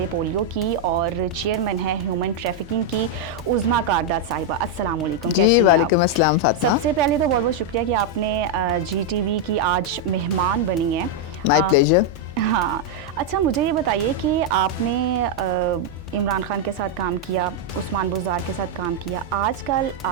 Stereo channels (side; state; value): both; normal; correlation -0.01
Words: پولیو کی اور چیئرمین ہے ہیومن ٹریفکنگ کی عظمیٰ کارداد صاحبہ. السلام علیکم. کیسی ہیں آپ؟ وعلیکم السلام فاطمہ. سب سے پہلے تو بہت بہت شکریہ کہ آپ نے جی ٹی وی کی آج مہمان بنی ہیں. مائی پلیجر. ہاں اچھا مجھے یہ بتائیے کہ آپ نے عمران خان کے ساتھ کام کیا, عثمان بزدار کے ساتھ کام کیا, آج کل